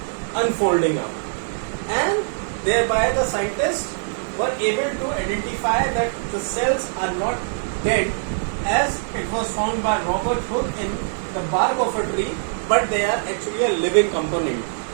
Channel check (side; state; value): left; silent; 64 dB below the other